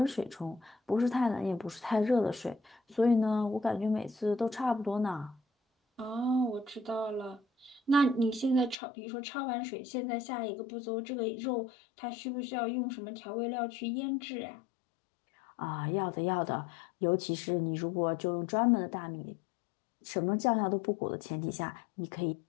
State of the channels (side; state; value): right; drops out; at 8.8 s